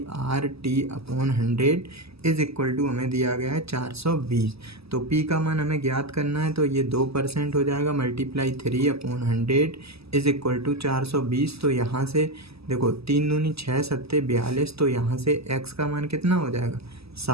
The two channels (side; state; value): left; late; 0.78 ms